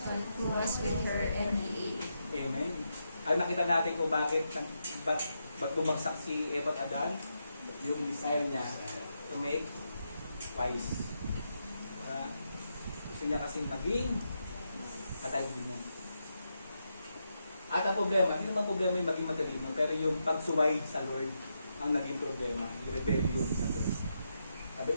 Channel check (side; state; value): both; inverted; correlation -0.84